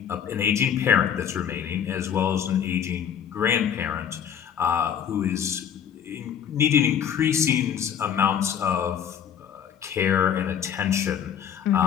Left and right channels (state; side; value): quieter; right; 8.6 dB